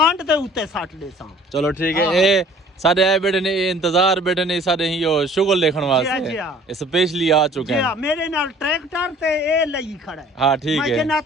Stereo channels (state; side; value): normal; both; correlation 0.52